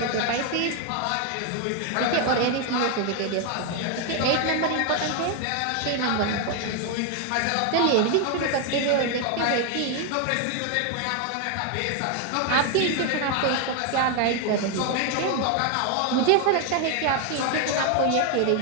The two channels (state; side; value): different; both; correlation 0.01